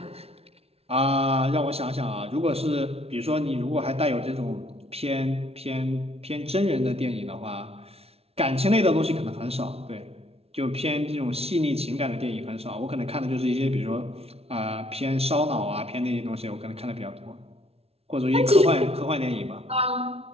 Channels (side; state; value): left; late; 0.30 ms